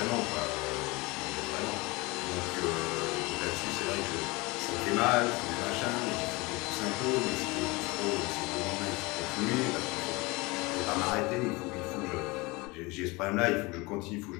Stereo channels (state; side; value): quieter; right; 24.4 dB